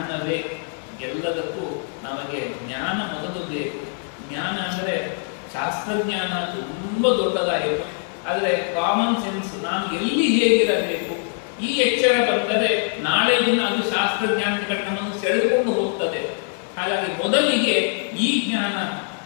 ಎಲ್ಲದಕ್ಕೂ ನಮಗೆ ಜ್ಞಾನ ಮೊದಲು ಬೇಕು. ಜ್ಞಾನ ಅಂದರೆ ಶಾಸ್ತ್ರಜ್ಞಾನ ತುಂಬ ದೊಡ್ಡದಾಯಿತು, ಆದರೆ ಕಾಮನ್ ಸೆನ್ಸ್, ನಾನು ಎಲ್ಲಿ ಹೇಗಿರಬೇಕು, ಈ ಎಚ್ಚರ ಬಂದರೆ ನಾಳೆ ದಿನ ಅದು ಶಾಸ್ತ್ರಜ್ಞಾನದ ಕಡೆ ನಮ್ಮನ್ನು ಸೆಳೆದುಕೊಂಡು ಹೋಗ್ತದೆ. ಹಾಗಾಗಿ ಮೊದಲಿಗೆ ಈ ಜ್ಞಾನ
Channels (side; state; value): right; silent; 57 dB below the other